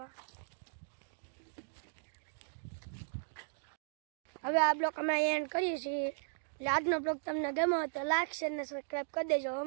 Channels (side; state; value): left; silent; digital silence